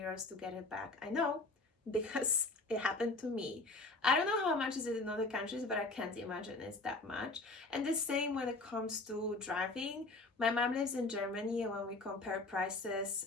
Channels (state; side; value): quieter; right; 3.2 dB